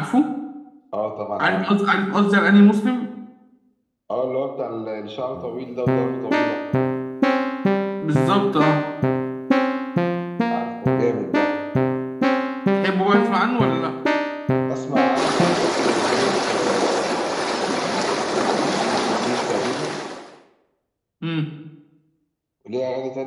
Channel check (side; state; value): both; identical; correlation 1.00